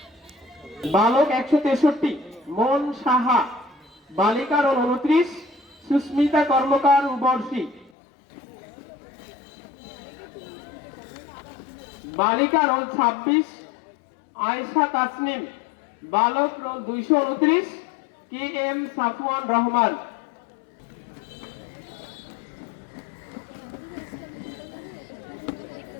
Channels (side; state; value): right; drops out; at 7.9 s